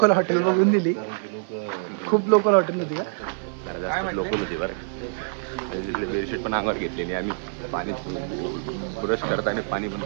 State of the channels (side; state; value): left; silent; 62 dB below the other